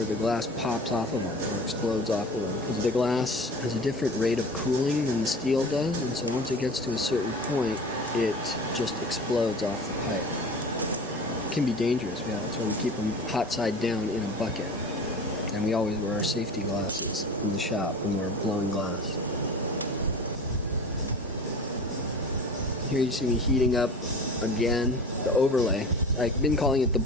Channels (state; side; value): normal; both; correlation 0.37